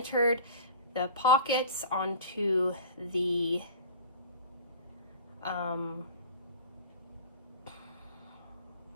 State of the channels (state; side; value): inverted; both; correlation -0.39